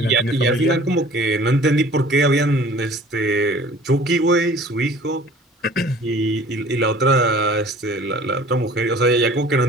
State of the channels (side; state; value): both; normal; correlation 0.49